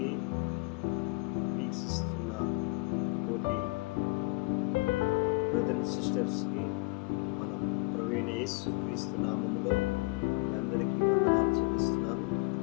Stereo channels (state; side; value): quieter; right; 26.5 dB